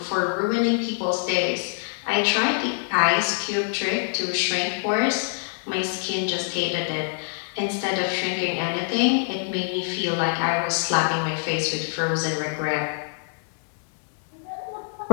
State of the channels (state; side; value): silent; right; digital silence